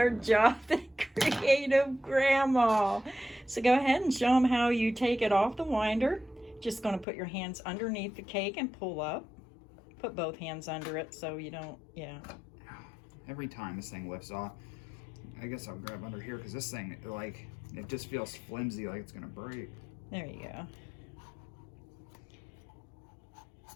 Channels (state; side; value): drops out; right; at 7.1 s